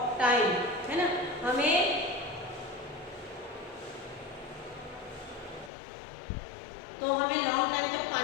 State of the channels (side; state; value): right; drops out; at 5.7 s